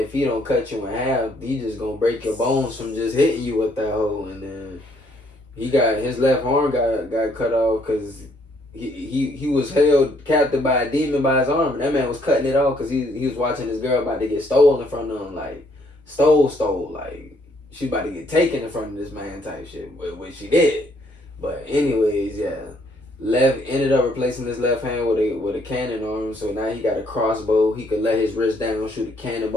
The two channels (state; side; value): normal; both; correlation 0.68